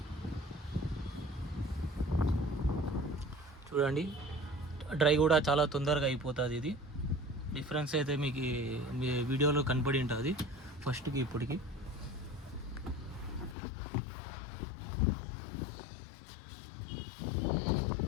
చూడండి, డ్రై కూడా చాలా తొందరగా అయిపోతుంది. ఇది డిఫరెన్స్ అయితే మీకు మీ వీడియోలో కనపడి ఉంటుంది ఫస్ట్కి ఇప్పటికి.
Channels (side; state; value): right; drops out; at 13.6 s